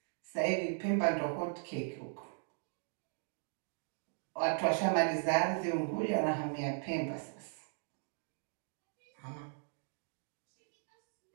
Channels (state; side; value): silent; left; 52 dB below the other